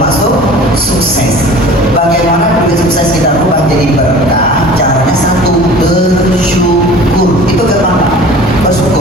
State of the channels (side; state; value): both; normal; correlation 0.43